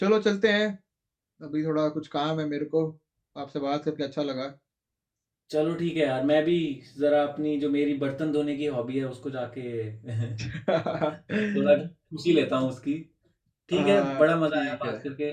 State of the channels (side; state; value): both; identical; correlation 1.00